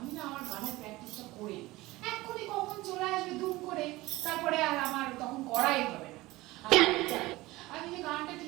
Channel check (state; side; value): quieter; left; 19.5 dB